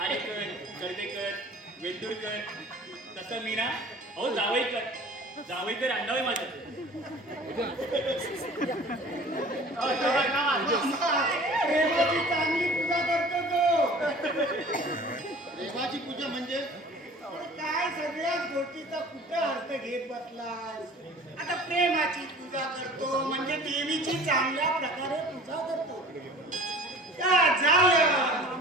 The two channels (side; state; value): both; normal; correlation 0.45